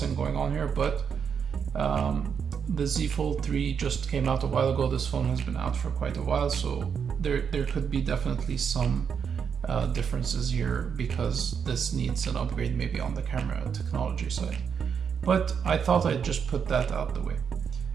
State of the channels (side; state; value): left; quieter; 6.9 dB